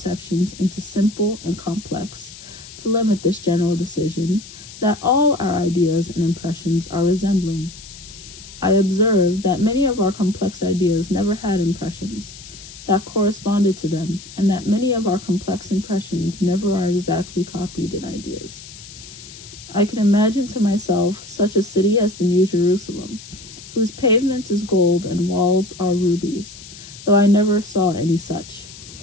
into simple and complex, to limit this general decision, that all our ideas and impressions are resembling. I observe that many of our complex ideas never had impressions that corresponded to them, and that many of our complex impressions never are exactly copied in ideas. I can imagine to myself such a city as the New Jerusalem, whose pavement is gold and walls are rubies, though I never saw any such.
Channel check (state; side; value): noise; left; hiss, 16 dB below the sound